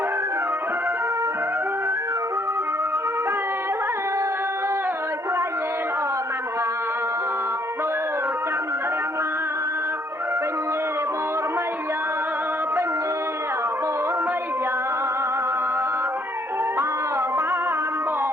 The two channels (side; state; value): both; normal; correlation 0.66